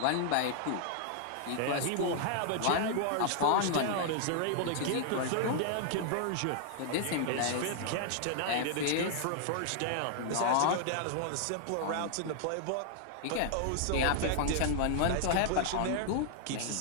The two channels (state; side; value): different; both; correlation -0.01